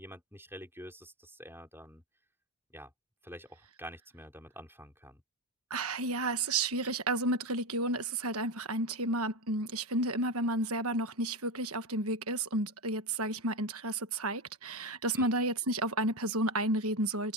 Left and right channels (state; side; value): normal; both; correlation 0.14